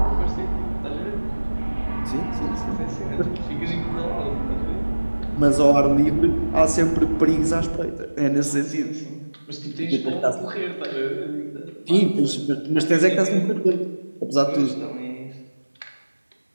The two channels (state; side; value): inverted; both; correlation -1.00